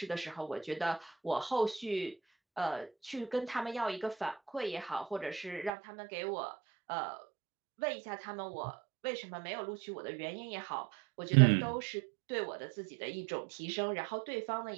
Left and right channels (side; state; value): left; drops out; at 5.7 s